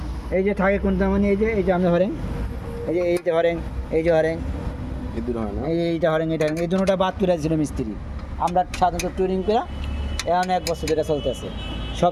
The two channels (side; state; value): both; identical; correlation 1.00